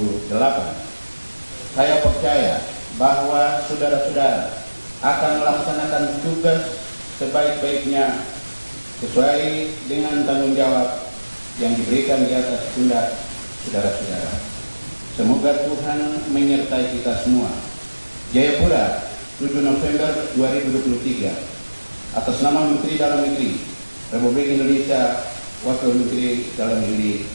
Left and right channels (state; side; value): inverted; both; correlation -1.00